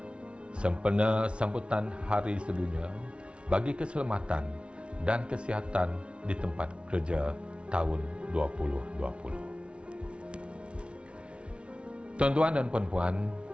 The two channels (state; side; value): late; left; 0.059 ms